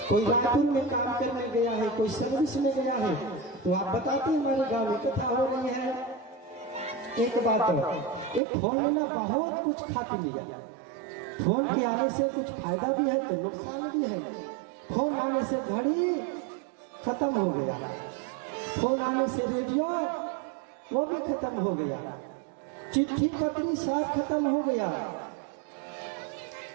कोई रायपुर में काम करने गया है, कोई सर्विस में गया है, तो आप बताते हैं हमारे गांव में कथा हो रही है। एक बात, एक फोन लेना बहुत कुछ खा पी लिया। फोन के आने से कुछ फायदा भी है तो नुकसान भी है। फोन आने से घड़ी खत्म हो गया, फोन आने से रेडियो वो भी खत्म हो गया, चिट्ठी पत्री सब खत्म हो गया।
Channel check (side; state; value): left; drops out; at 8.4 s